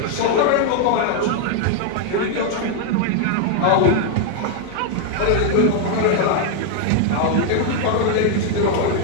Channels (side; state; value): both; different; correlation 0.00